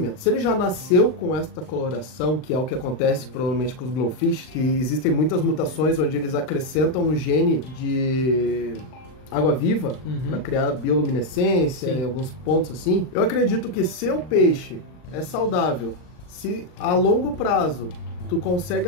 Se ele já nasceu com esta coloração, que é o que acontece provavelmente com os glowfish, que existem muitas mutações onde eles acrescentam um gene de água-viva para criar bioluminescência em alguns pontos assim. Eu acredito que se o peixe é saudável, se a longo prazo tu consegue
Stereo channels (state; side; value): late; right; 39 ms